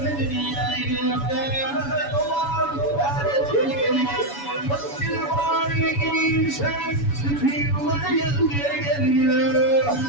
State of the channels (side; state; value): right; late; 7.1 ms